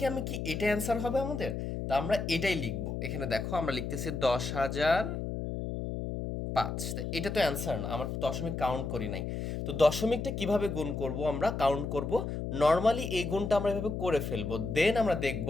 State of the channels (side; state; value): left; noise; hum, 4 dB below the sound